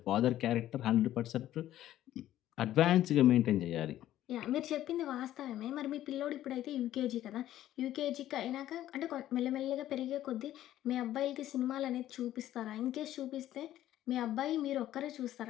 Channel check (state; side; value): quieter; right; 13.0 dB